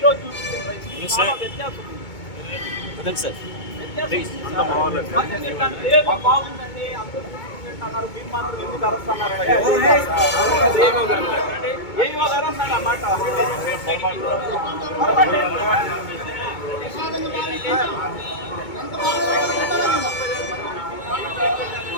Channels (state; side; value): late; right; 2.2 ms